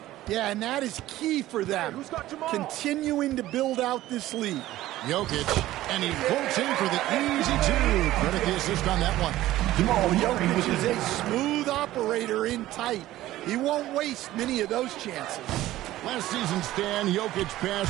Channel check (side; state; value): left; quieter; 15.3 dB